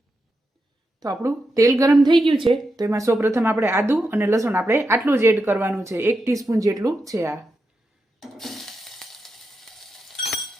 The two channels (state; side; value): normal; both; correlation 0.87